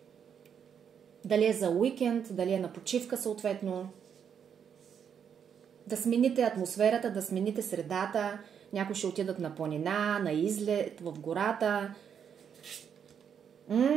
Дали е за уикенд, дали е на почивка съответно. Да смените атмосферата, да смените средата, някои ще отидат на планина, на излет, в гората.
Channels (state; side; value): quieter; left; 7.8 dB